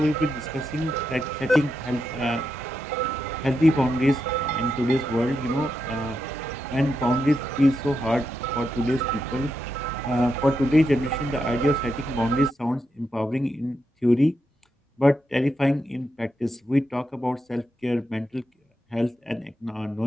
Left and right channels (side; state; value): both; normal; correlation 0.85